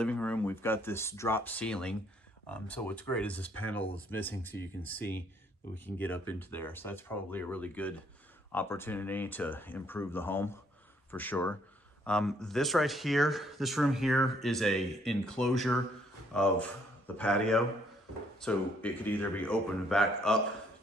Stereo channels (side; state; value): both; normal; correlation 0.67